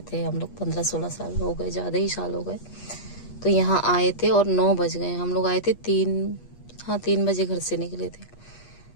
थे हम लोग। 15-16 साल हो गए, ज़्यादा ही साल हो गए। तो यहाँ आए थे और 9 बज गए। हम लोग आए थे 3 बजे घर से निकले थे।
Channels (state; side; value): late; right; 8.4 ms